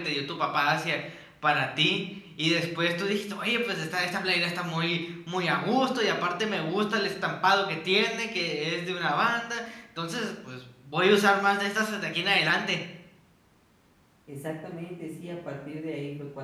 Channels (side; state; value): both; identical; correlation 1.00